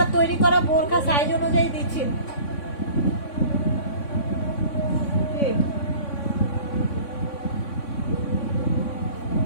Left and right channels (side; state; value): right; late; 3.6 ms